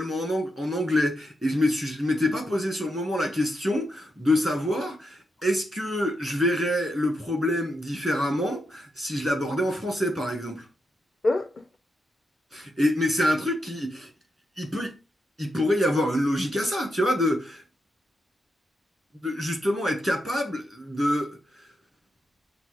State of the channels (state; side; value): normal; both; correlation 0.84